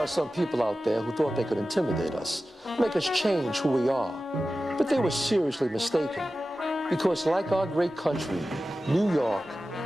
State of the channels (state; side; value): normal; both; correlation 0.94